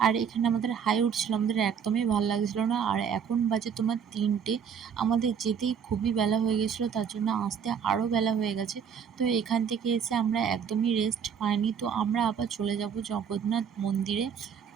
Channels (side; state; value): left; quieter; 7.3 dB